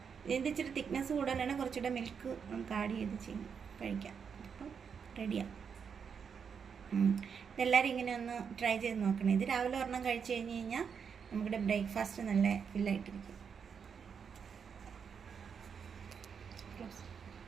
ഇതിൻ്റെ ഇച്ചിരി തിക്നെസ് കൂടുതലാണ്, കുറച്ചുകൂടെ മിൽക്ക് നമുക്ക് ആഡ് ചെയ്ത് കഴിക്കാം. അപ്പം റെഡിയാണ്. ഇതെല്ലാവരും ഇങ്ങനെ ഒന്ന് ട്രൈ ചെയ്ത് നോക്കണം. ഇത് രാവിലെ ഒരെണ്ണം കഴിച്ച് കഴിഞ്ഞ് കഴിഞ്ഞാൽ നമ്മുടെ ബ്രേക്ക്ഫാസ്റ്റ് നല്ല ഫില്ലായിട്ടിരിക്കും.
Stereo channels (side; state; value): left; quieter; 6.7 dB